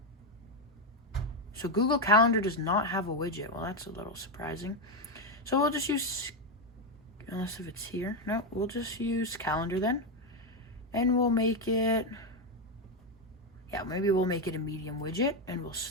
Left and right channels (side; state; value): both; normal; correlation 0.07